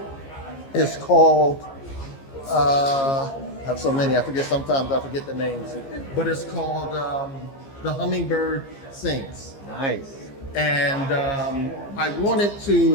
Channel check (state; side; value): late; right; 15 ms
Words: is called, I have so many, sometimes I forget the names, but it's called The Hummingbird Sings. Nice. And I wanted